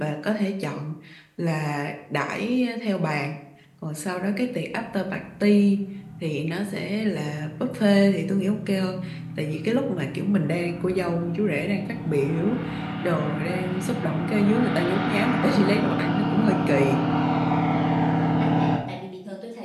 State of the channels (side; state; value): both; identical; correlation 1.00